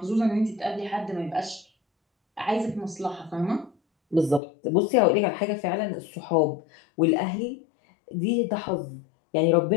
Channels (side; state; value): right; drops out; at 4.4 s